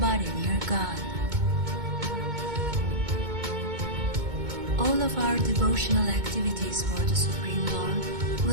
near God. All of our devotional activities for the Supreme Lord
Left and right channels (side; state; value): left; late; 2.2 ms